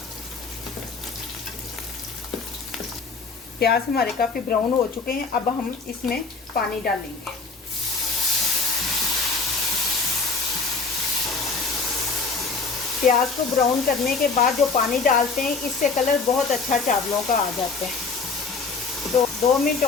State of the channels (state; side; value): quieter; right; 4.5 dB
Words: प्याज हमारे काफ़ी ब्राउन हो चुके हैं, अब हम इसमें पानी डालेंगे। प्याज को ब्राउन करने के बाद जो पानी डालते हैं, इससे कलर बहुत अच्छा चावलों का आ जाता है। तो 2 मिनट